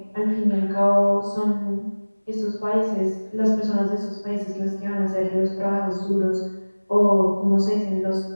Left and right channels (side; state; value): both; inverted; correlation -1.00